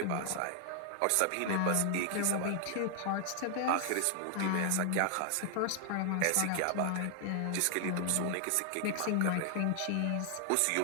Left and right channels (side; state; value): both; different; correlation 0.00